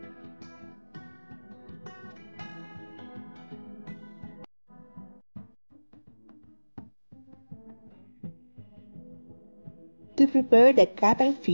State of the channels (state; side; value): inverted; both; correlation -1.00